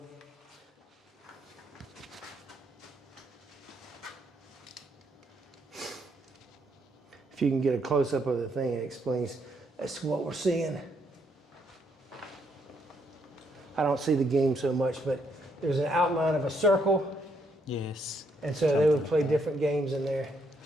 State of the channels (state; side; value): normal; both; correlation 0.74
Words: If you can get a close-up of the thing, it explains that's what we're seeing. I don't see the game so much, but there's an outline of a circle, Yes. and so they would play different games in there.